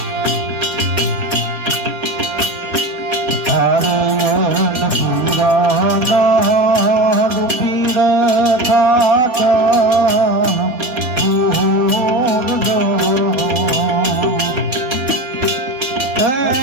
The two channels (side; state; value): left; late; 3.4 ms